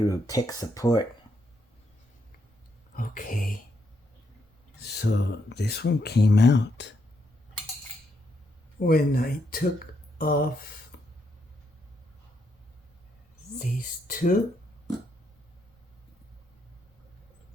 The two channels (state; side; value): normal; both; correlation 0.77